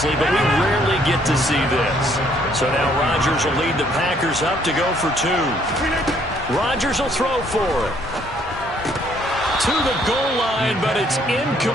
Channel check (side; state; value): both; normal; correlation 0.65